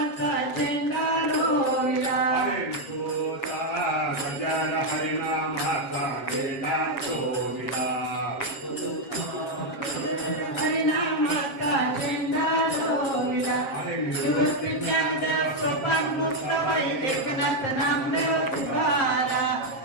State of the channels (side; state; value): right; late; 7.4 ms